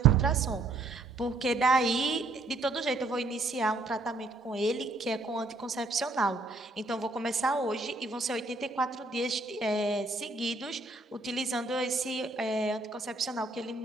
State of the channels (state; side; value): quieter; left; 3.1 dB